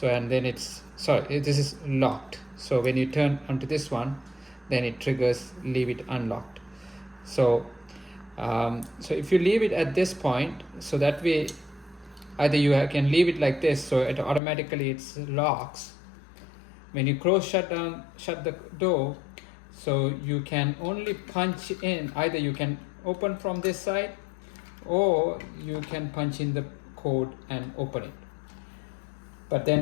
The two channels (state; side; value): drops out; right; at 14.4 s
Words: and then it's sorry, this is locked. So when you turn onto this one, then it triggers leave it unlocked. So so if you leave it at this point, so that way either you can leave it like this, so it automatically it's locks. When you shut the door, so you can only punch in, either you can open from this side or you can punch in the code and open it. But then